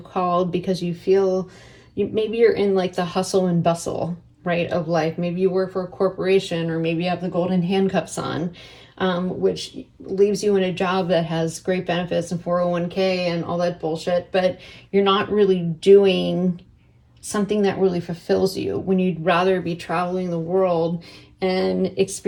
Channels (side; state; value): both; identical; correlation 1.00